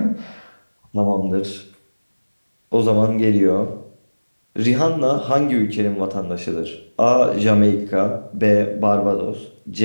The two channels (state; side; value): inverted; both; correlation -1.00